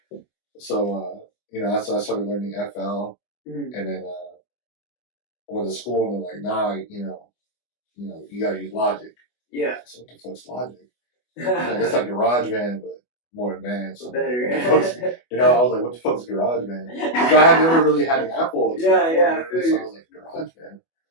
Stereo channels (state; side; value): late; right; 24 ms